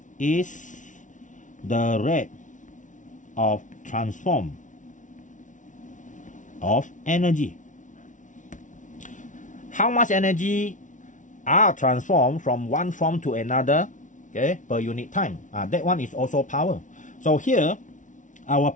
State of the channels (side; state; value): right; late; 0.37 ms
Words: is the rate of transform of energy. How much energy are transformed from one form to another, okay, per unit time. That one is also power. So here, our